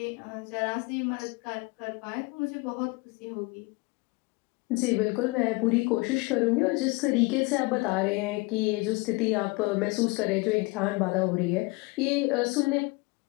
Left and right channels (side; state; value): right; quieter; 25.6 dB